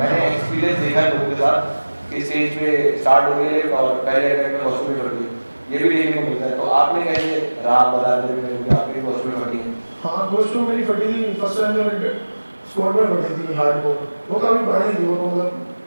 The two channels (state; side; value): inverted; both; correlation -1.00